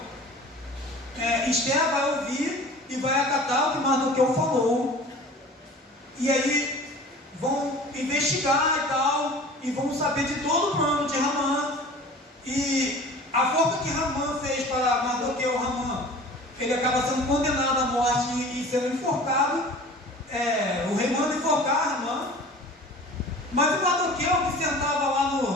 Esther vai ouvir e vai acatar o que Mardoqueu falou, e aí vão investigar e tal, e vão saber de todo o plano de Ramã, e a forma que Ramã fez para Mardoqueu, ele acaba sendo condenado à morte e sendo enforcado. O rei manda enforcar Ramã, mas o Mardoqueu, que sentava lá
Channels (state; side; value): normal; both; correlation 0.42